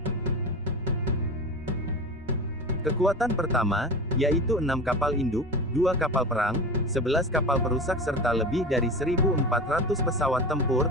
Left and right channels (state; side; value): normal; both; correlation 0.29